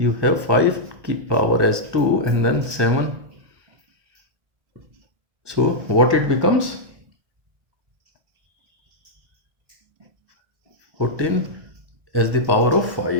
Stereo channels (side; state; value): left; late; 1.6 ms